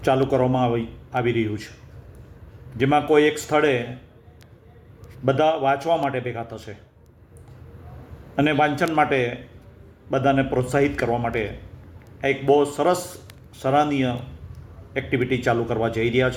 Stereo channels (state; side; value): identical; both; correlation 1.00